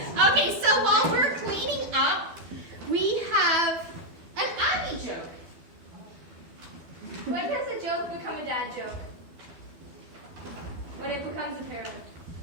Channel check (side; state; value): left; late; 12 ms